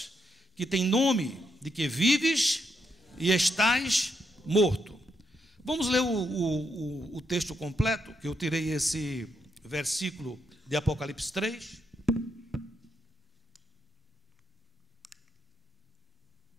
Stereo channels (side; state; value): both; normal; correlation 0.80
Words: que tem nome de que vives e estás morto. Vamos ler o texto completo, que eu tirei esse versículo de Apocalipse 3.